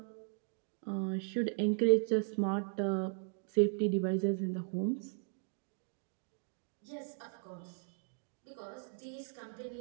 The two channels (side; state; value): left; silent; 53 dB below the other